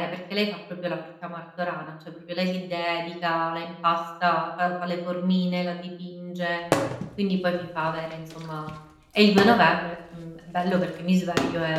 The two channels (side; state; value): both; identical; correlation 1.00